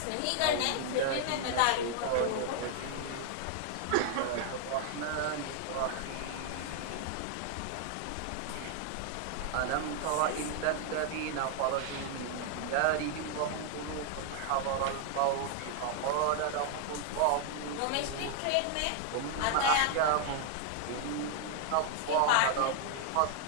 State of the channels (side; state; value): both; different; correlation 0.00